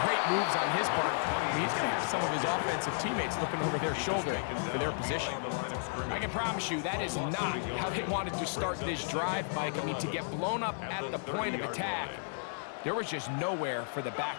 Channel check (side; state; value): right; silent; 56 dB below the other